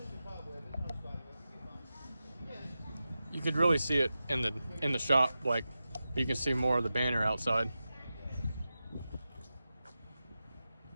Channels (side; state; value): both; inverted; correlation -0.92